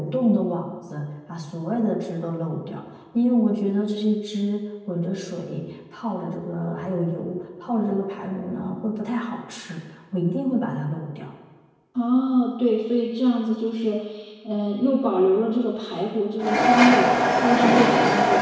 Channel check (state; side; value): identical; both; correlation 1.00